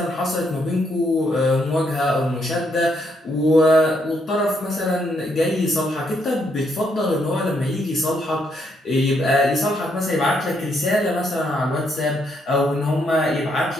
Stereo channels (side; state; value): both; normal; correlation 0.74